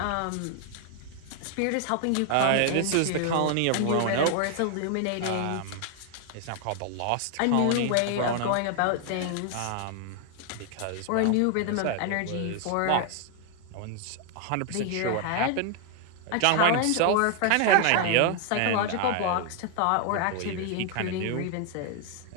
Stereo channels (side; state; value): both; different; correlation 0.00